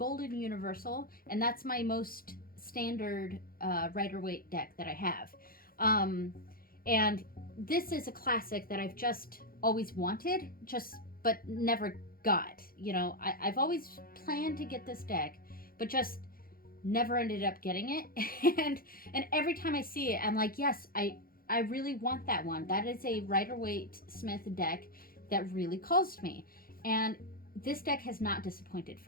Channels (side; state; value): right; late; 0.42 ms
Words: Universal, and that's my most standard Rider-Waite deck that I have. And this is a classic that I've just always wanted, but never got. You know, I've always planned to get this deck, but just never ended up getting it. and every time I see it, I'm like, yes, I really want that one. That is a Rider-Waite Smith deck that really calls to me. And this deck has not disappointed